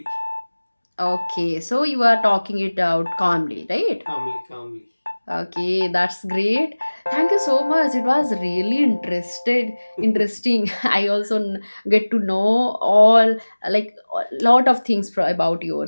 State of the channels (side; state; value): both; inverted; correlation -1.00